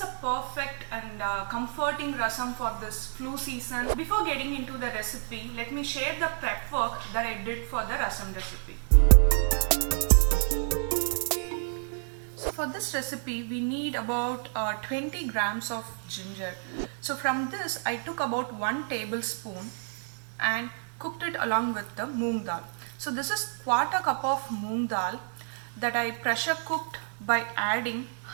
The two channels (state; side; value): silent; left; 55 dB below the other